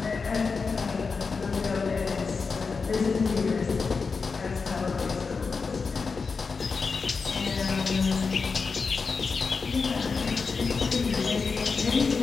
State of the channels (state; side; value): quieter; right; 4.8 dB